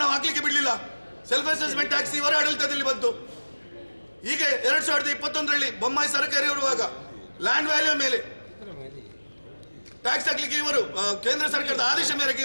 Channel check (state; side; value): inverted; both; correlation -1.00